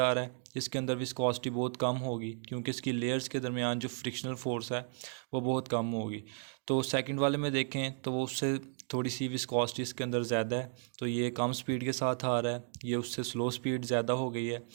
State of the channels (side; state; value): left; silent; digital silence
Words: रहा है, इसके अंदर विस्कोसिटी बहुत कम होगी क्योंकि इसकी लेयर्स के दरमियान जो फ्रिक्शनल फोर्स है वो बहुत कम होगी। तो सेकंड वाले में देखें तो वो उससे थोड़ी सी विस्कोसिटी इसके अंदर ज़्यादा है, तो ये कम स्पीड के साथ आ रहा है, ये उससे स्लो स्पीड ज़्यादा हो गई है।